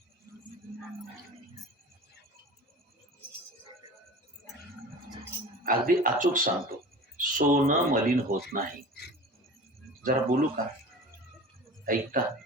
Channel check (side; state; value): both; normal; correlation 0.38